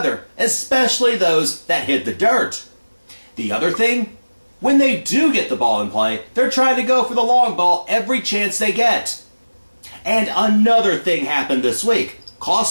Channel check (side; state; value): both; inverted; correlation -1.00